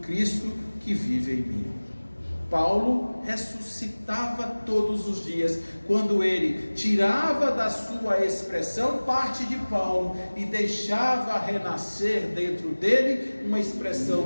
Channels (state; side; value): inverted; both; correlation -1.00